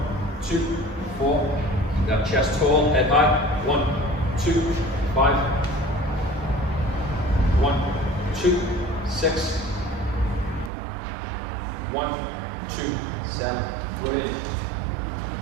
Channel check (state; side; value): drops out; left; at 10.7 s